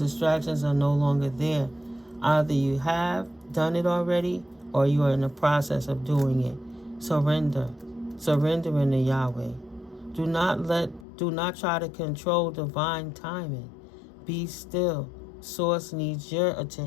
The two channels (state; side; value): drops out; right; at 11.1 s